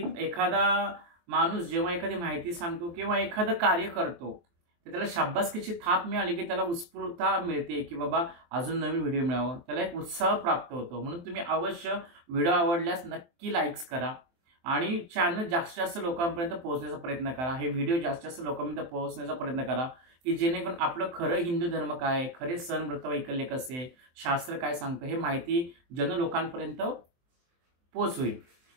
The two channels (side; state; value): left; late; 23 ms